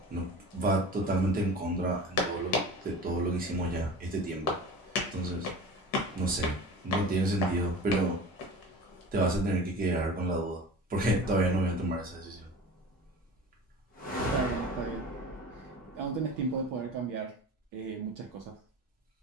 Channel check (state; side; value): normal; both; correlation 0.36